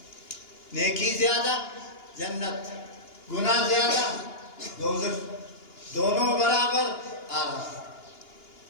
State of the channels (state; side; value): late; right; 2.9 ms